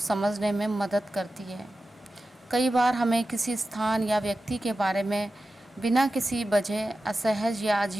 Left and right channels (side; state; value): both; normal; correlation 0.93